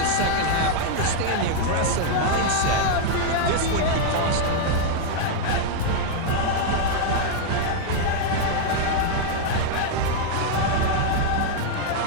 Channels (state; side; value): different; both; correlation 0.00